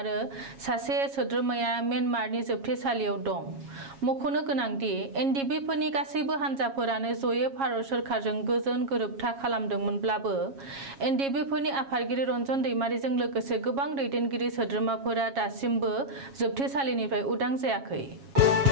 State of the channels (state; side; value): late; left; 7.3 ms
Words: सासे सोद्रोमाया म्यानमारनि जोबथेसालियाव दं मख'नो गोनांदि एनडिपिफोरनि गासैबो हान्जाफोरानो जयै भारत सोरखारजों गोजोन गोरोबथा खालामदोंमोनब्लाबो एनडिपिफोरनि आफादगिरि रन्जन दैमारिजों लोगोसे गोबां दैदेनगिरि सोद्रोमाफोरा दासिमबो जोबथेसालिनिफ्राय उदां जायाखै